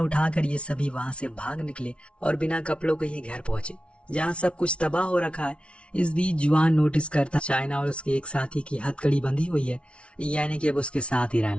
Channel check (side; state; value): right; late; 0.060 ms